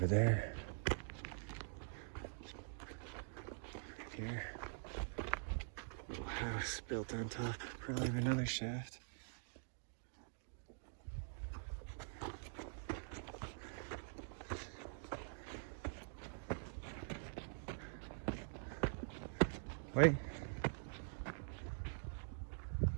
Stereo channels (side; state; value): left; silent; digital silence